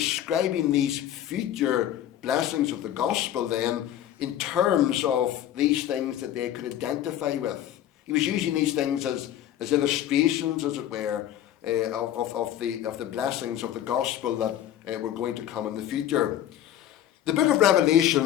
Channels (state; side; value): quieter; right; 11.6 dB